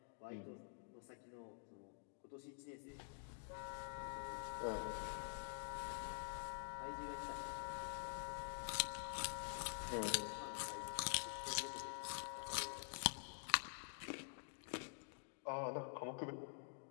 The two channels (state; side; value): silent; right; digital silence